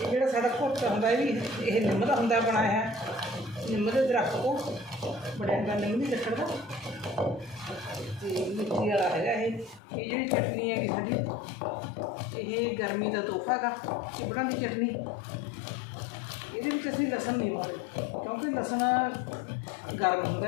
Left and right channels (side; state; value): right; drops out; at 9.8 s